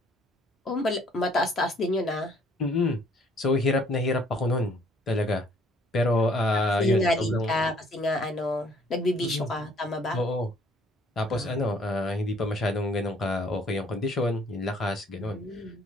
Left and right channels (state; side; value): normal; both; correlation 0.61